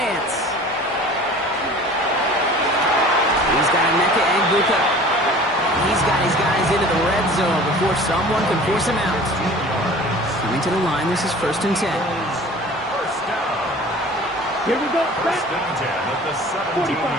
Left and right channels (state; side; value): normal; both; correlation 0.44